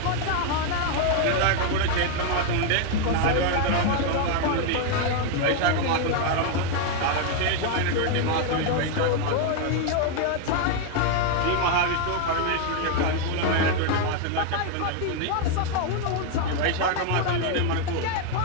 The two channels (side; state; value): both; different; correlation 0.01